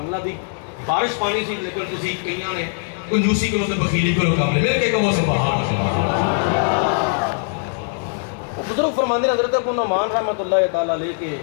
اللہ دی بارش پانی سی لیکن تسی کئیاں نے کنجوسی کرو تے بخیلی کرو کام نہیں مل کے کہو سبحان اللہ وہ بزرگ فرماندے حضرت ابو نعمان رحمت اللہ تعالی علیہ کہ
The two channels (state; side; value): silent; right; 65 dB below the other